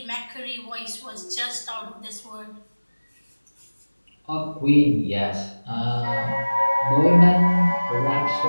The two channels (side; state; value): both; inverted; correlation -1.00